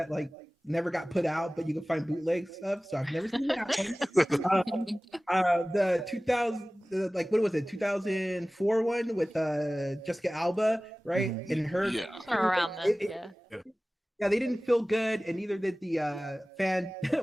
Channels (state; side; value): normal; both; correlation 0.98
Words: like never got put out, but you can find bootlegs of. So I've never seen that one. The 2000, like what was it? 2004 one with Jessica Alba, right? Mm-hmm. And her around them. Yeah, they didn't feel good, and neither did the fan.